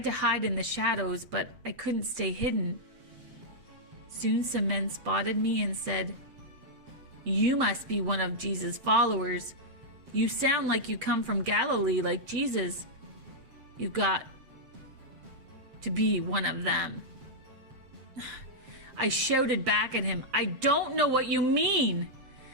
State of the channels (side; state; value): left; late; 7.6 ms